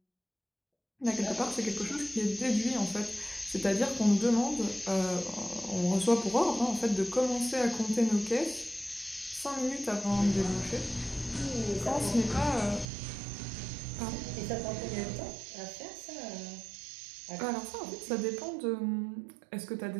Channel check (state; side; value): drops out; left; at 12.9 s